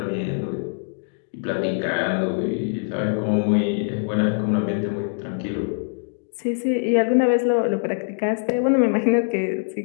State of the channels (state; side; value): silent; right; digital silence